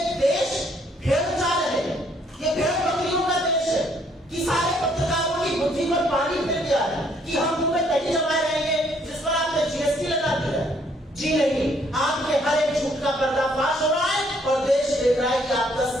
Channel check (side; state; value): both; normal; correlation 0.66